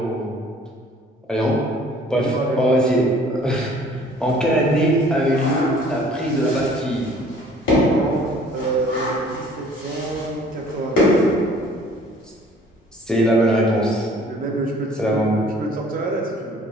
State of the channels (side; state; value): both; normal; correlation 0.54